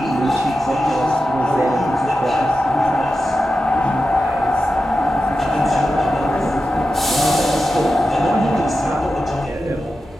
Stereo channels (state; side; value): normal; both; correlation 0.91